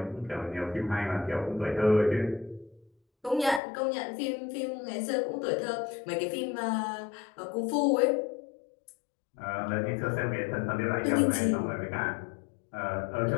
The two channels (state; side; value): drops out; right; at 3.6 s